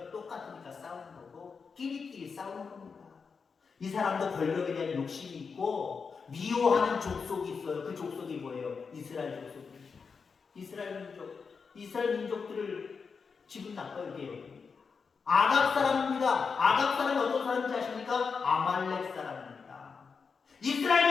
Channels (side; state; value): right; quieter; 5.4 dB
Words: 똑같으니까 싸우는 거고 끼리끼리 싸우는 겁니다. 이 사람도 권력에 대한 욕심이 있고 미워하는 족속이 있어요. 그 족속이 뭐예요? 이스라엘 족속입니다. 이스라엘 민족들을 기분 나빠요. 이게 아각 사람입니다. 아각 사람이 어떤 사람인지 아십니까? 아말렉 사람입니다.